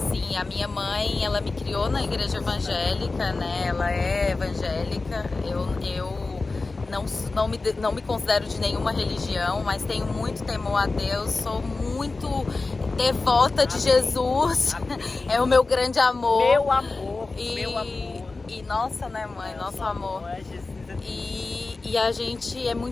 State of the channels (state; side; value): quieter; right; 3.6 dB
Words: a minha mãe, ela me criou na igreja evangélica, né, ela é evangélica, eu não me considero de nenhuma religião, mas tenho muito temor a Deus, sou muito devota de Jesus, é o meu grande amor. Meu amor, meu amor. E nossa, né, mãe, nosso amor. E a gente é